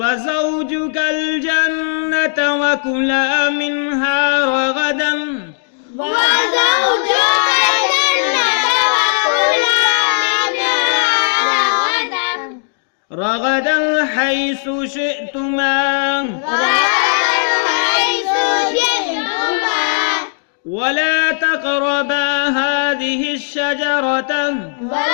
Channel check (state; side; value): silent; right; digital silence